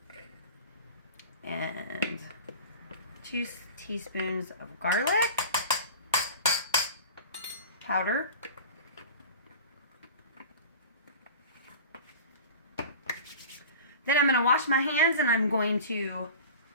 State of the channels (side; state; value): both; inverted; correlation -0.37